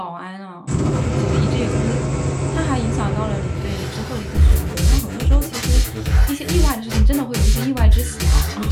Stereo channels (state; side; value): identical; both; correlation 1.00